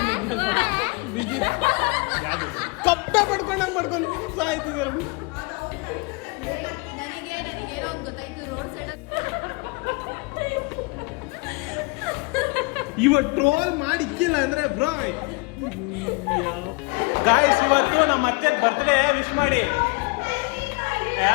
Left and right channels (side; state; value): right; quieter; 29.1 dB